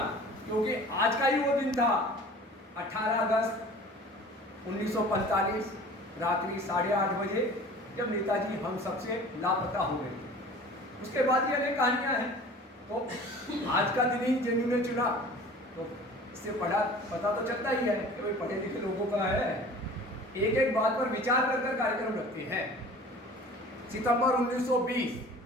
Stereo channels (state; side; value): normal; both; correlation 0.43